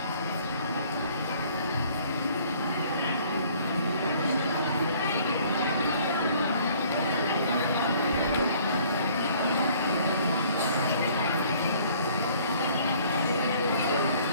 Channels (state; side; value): inverted; both; correlation -0.57